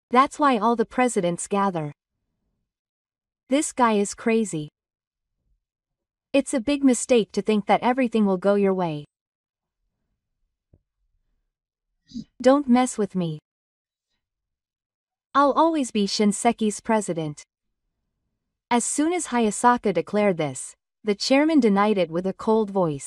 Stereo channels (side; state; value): both; identical; correlation 1.00